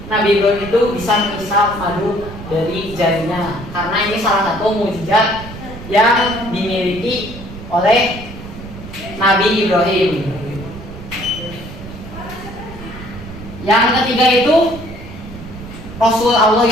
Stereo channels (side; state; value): right; noise; rumble, 13 dB below the sound